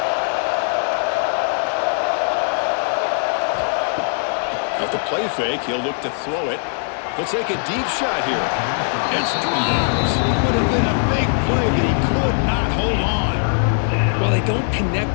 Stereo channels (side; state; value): right; silent; 66 dB below the other